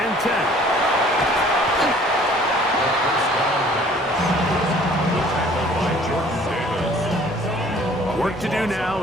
10. Work to do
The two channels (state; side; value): normal; both; correlation 0.54